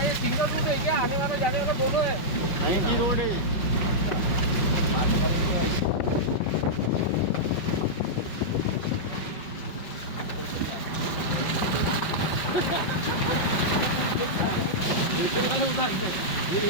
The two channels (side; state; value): right; late; 5.4 ms